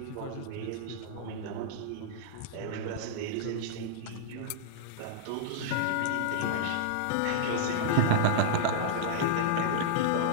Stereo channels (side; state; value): both; different; correlation -0.02